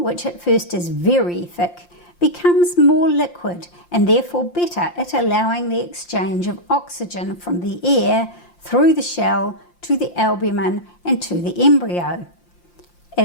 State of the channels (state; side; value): late; right; 5.7 ms